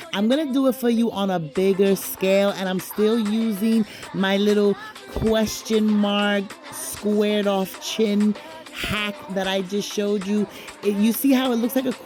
I'm going to do it for you on a bigger scale, and I'm still using my little question mark squared off chin hack that I just showed you. You see how it looks like a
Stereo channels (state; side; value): identical; both; correlation 1.00